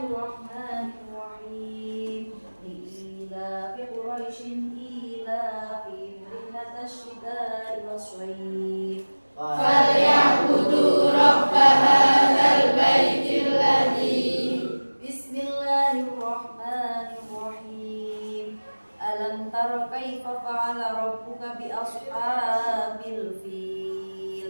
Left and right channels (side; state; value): both; inverted; correlation -1.00